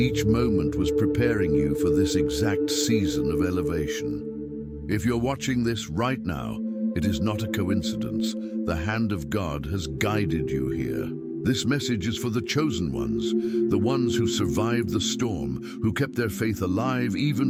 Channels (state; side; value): identical; both; correlation 1.00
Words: moment was preparing you for this exact season of elevation. If you're watching this right now, it is not a coincidence. The hand of God has guided you here. This message is for the chosen ones, the ones who survived the storm, who kept their faith alive